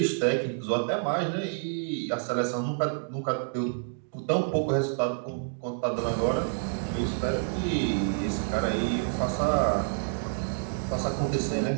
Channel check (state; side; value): silent; left; digital silence